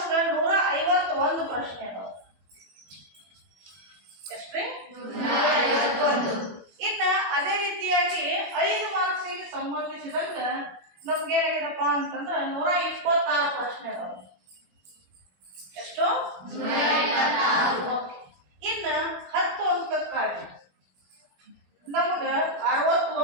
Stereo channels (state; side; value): late; left; 21 ms